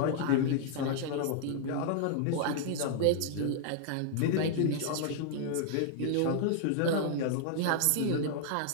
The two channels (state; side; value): different; both; correlation -0.01